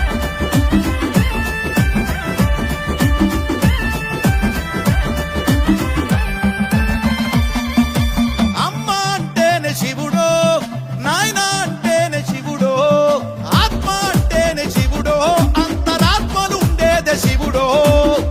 అమ్మ అంటేనే శివుడో నాయన అంటేనే శివుడో ఆత్మ అంటేనే శివుడో అంతరాత్మలు ఉండేదే శివుడో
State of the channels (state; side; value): identical; both; correlation 1.00